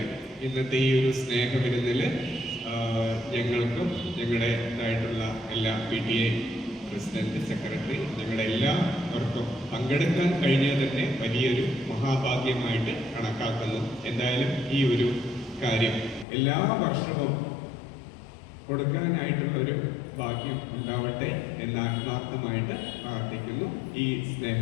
ഇന്നത്തെ ഈ ഒരു സ്നേഹവിരുന്നിൽ ഞങ്ങൾക്കും ഞങ്ങളുടേതായിട്ടുള്ള എല്ലാ PTA പ്രസിഡന്റ്, സെക്രട്ടറി, ഞങ്ങളുടെ എല്ലാവർക്കും പങ്കെടുക്കാൻ കഴിഞ്ഞാൽ തന്നെ വലിയൊരു മഹാഭാഗ്യമായിട്ട് കണക്കാക്കുന്നു. എന്തായാലും ഈ ഒരു കാര്യം എല്ലാ വർഷവും കൊടുക്കാനായിട്ടുള്ളൊരു ഭാഗ്യം ഉണ്ടാവട്ടെ എന്ന് ആത്മാർത്ഥമായിട്ട് പ്രാർത്ഥിക്കുന്നു. ഈ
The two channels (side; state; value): right; drops out; at 16.2 s